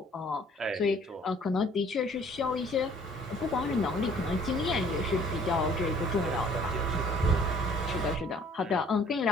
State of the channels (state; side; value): normal; both; correlation 0.57